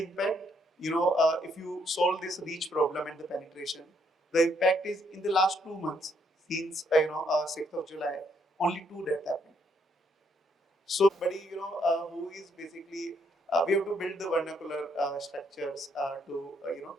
impact, if you solve this reach problem and the penetration, the impact is in the last 2 months since 6th of July, only 2 deaths happened. So somebody who is basically we have to build the vernacular structures to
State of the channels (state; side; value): normal; both; correlation 0.72